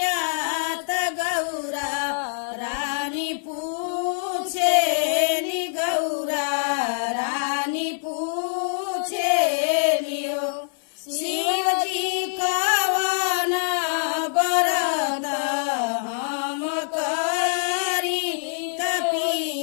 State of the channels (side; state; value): right; silent; 62 dB below the other